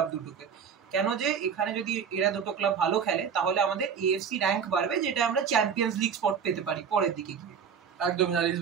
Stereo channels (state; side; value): quieter; left; 7.0 dB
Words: দুটোকে। কেন যে এখানে যদি এরা দুটো ক্লাব ভালো খেলে তাহলে আমাদের এএফসি র্যাঙ্ক বাড়বে, যেটা আমরা চ্যাম্পিয়ন্স লিগ স্পট পেতে পারি পরের দিকে গিয়ে। একদম। আর